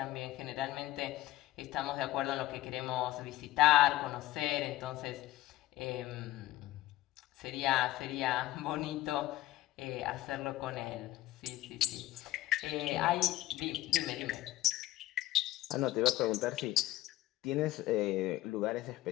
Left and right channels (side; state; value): right; quieter; 16.1 dB